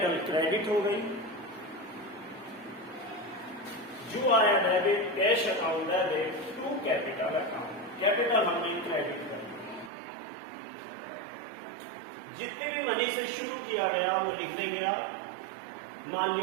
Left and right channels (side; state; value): left; drops out; at 9.9 s